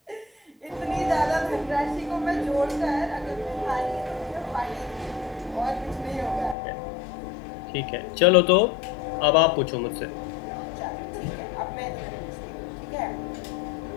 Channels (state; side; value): drops out; right; at 6.6 s